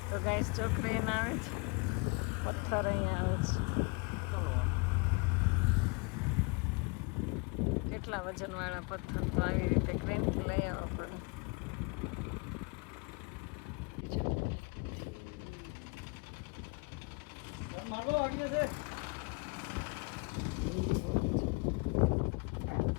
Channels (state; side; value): quieter; right; 30.1 dB